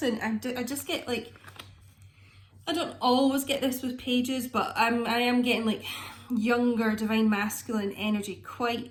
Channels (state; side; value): identical; both; correlation 1.00